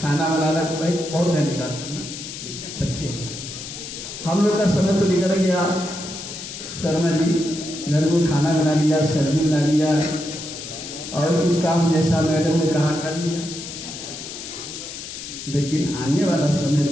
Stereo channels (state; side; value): noise; left; hiss, 10 dB below the sound